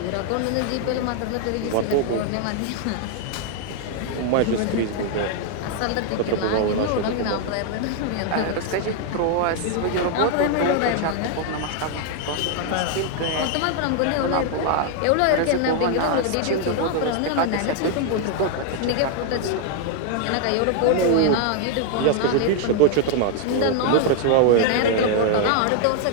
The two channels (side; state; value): both; different; correlation 0.00